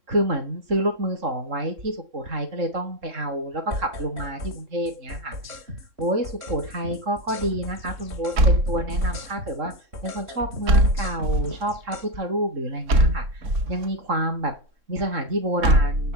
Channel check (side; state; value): left; late; 3.6 ms